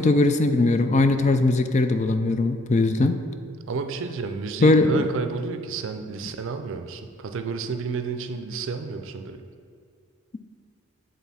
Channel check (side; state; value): both; normal; correlation 0.63